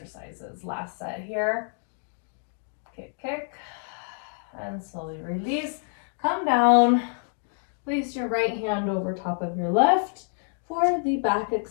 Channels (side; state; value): right; silent; 60 dB below the other